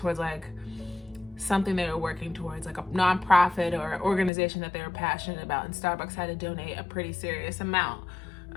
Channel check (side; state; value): right; drops out; at 4.3 s